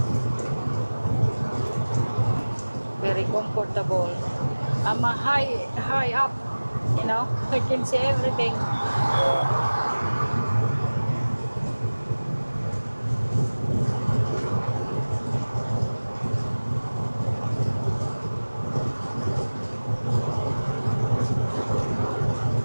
Very comfortable. I'm high up, you know. I can see everything. Yeah.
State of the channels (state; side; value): inverted; both; correlation -1.00